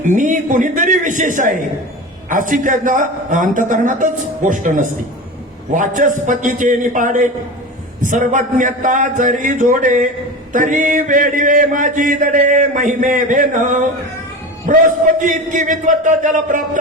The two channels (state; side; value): normal; both; correlation 0.29